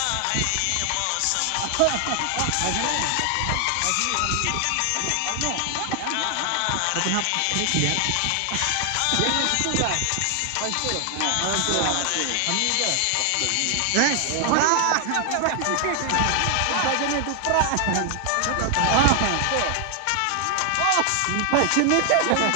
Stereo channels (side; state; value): both; different; correlation 0.00